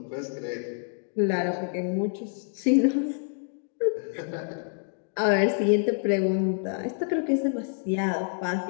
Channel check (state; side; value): silent; right; 60 dB below the other